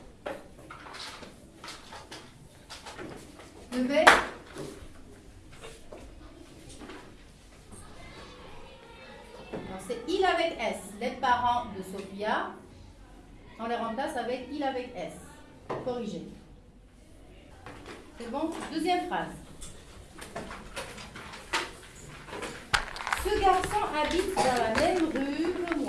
Levez. C'est il avec S. Les parents de Sophia, on les remplace avec il avec S. Corrigé. C'est bon? Deuxième phrase. Ce garçon habite dans la même rue que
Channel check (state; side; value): identical; both; correlation 1.00